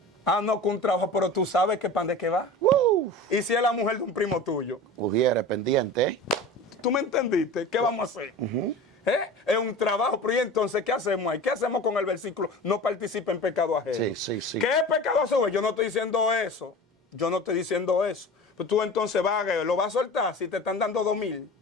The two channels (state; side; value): normal; both; correlation 0.35